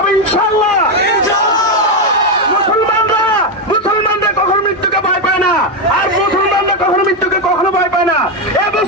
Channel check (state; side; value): normal; both; correlation 0.07